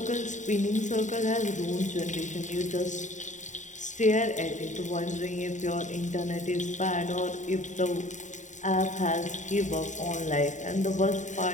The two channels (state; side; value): late; right; 0.36 ms